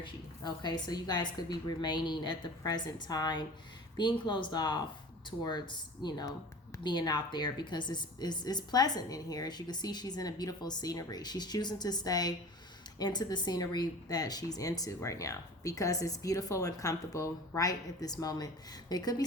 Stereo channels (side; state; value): both; normal; correlation 0.40